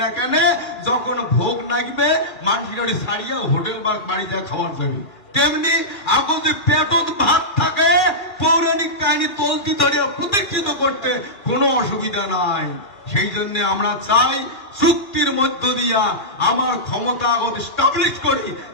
না কেন, যখন ভোগ লাগবে মানুষের ছাড়িয়া হোটেল বা বাড়িতে খাবার যাবে, তেমনি এখন যে পেটত ভাত থাকে, পৌরাণিক কাহিনী তলতি ধরিয়া প্রতিষ্ঠিত করতে কোনো অসুবিধা নাই। সেই জন্য আমরা চাই চুক্তির মধ্য দিয়া আমার ক্ষমতা আগত স্টাবলিশ করি,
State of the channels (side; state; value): right; late; 2.3 ms